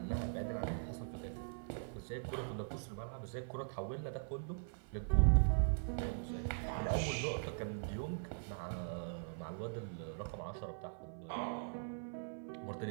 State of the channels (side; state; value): left; silent; 50 dB below the other